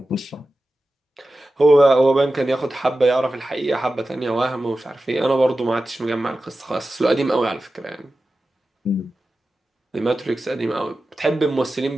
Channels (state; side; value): normal; both; correlation 0.94